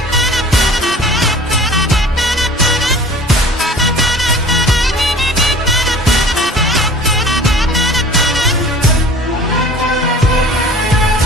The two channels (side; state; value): both; normal; correlation 0.45